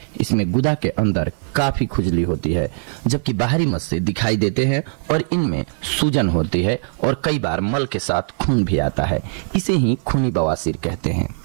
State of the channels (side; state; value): left; silent; 55 dB below the other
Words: इसमें गुदा के अंदर काफी खुजली होती है, जबकि बाहरी मस्से दिखाई देते हैं और इनमें सूजन होती है और कई बार मल के साथ खून भी आता है। इसे ही खूनी बवासीर कहते हैं।